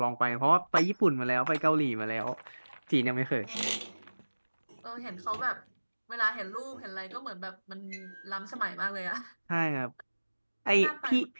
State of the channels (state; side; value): inverted; both; correlation -1.00